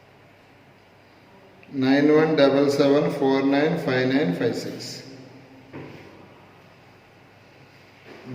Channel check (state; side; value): identical; both; correlation 1.00